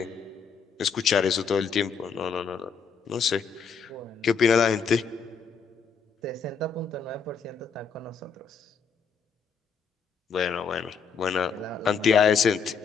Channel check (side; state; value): right; quieter; 5.9 dB